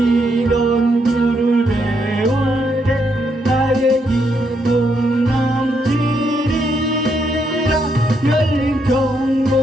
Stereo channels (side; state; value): both; normal; correlation 0.77